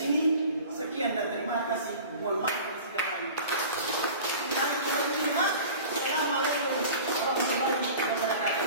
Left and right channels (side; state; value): both; inverted; correlation -0.40